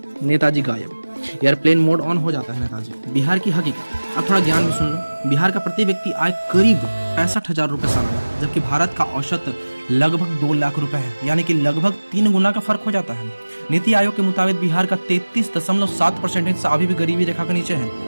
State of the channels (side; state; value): both; inverted; correlation -1.00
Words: नेताजी गायब। एयरप्लेन मोड ऑन हो जाता है नेताजी। बिहार की हकीकत, अब थोड़ा ज्ञान भी सुन लो। बिहार का प्रति व्यक्ति आय करीब 65,000 रुपये सालाना, जबकि भारत का औसत लगभग 2 लाख रुपए है, यानी कि लगभग 3 गुना का फर्क हो जाता है। नीति आयोग के मुताबिक बिहार का 33.7% हिस्सा अभी भी गरीबी रेखा के नीचे है,